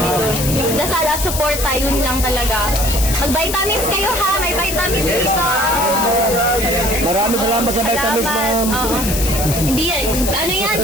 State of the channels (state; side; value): noise; left; hiss, 4 dB below the sound